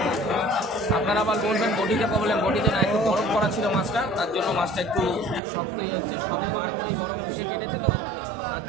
আপনারা আবার বলবেন বটিতে প্রবলেম, বটিতে না, একটু বরফ করা ছিল মাছটা, তার জন্য মাছটা একটু শক্তই হচ্ছে। সবে বরফ এসে কেটেছে তো, তার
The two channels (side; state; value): left; drops out; at 5.4 s